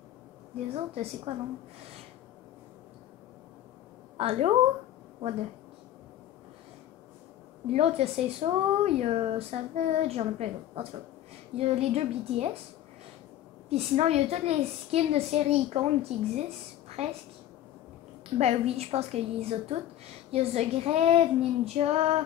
les autres, c'est quoi non? Allô? What the... L'autre, il y a Say So, il y a Savage, j'en ai plein d'autres. En tout cas, il y a les deux BTS. Puis sinon, il y a toutes les skins de séries icônes qui existent, presque. Ben oui, je pense qu'il les a toutes. Il y a The Grave, Ninja,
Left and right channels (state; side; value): quieter; right; 12.3 dB